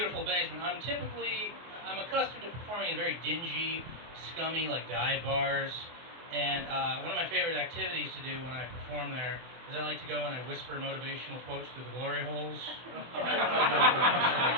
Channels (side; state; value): left; late; 24 ms